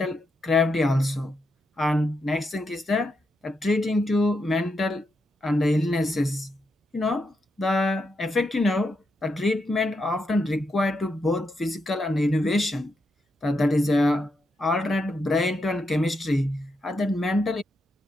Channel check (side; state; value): both; normal; correlation 0.82